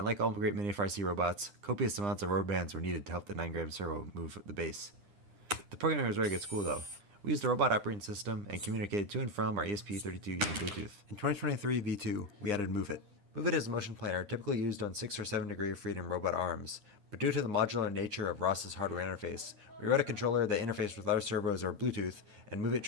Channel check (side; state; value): left; late; 9.8 ms